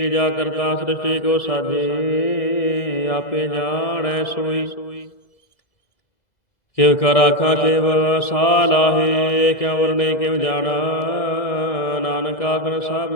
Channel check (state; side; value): late; right; 2.0 ms